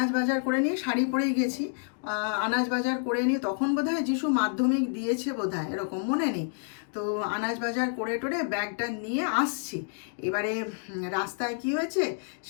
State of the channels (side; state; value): right; silent; digital silence